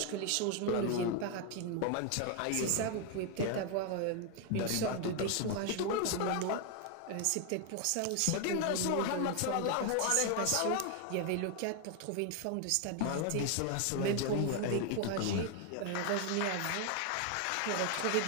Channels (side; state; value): both; different; correlation 0.01